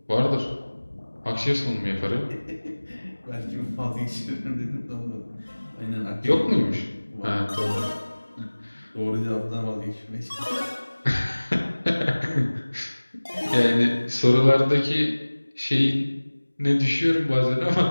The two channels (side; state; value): both; inverted; correlation -1.00